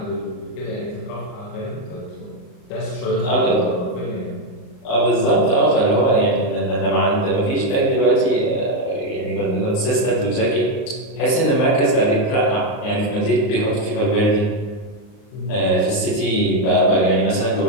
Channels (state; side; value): late; right; 38 ms